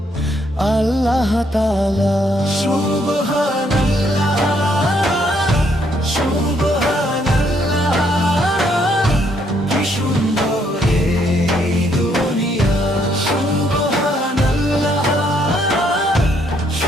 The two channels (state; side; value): normal; both; correlation 0.71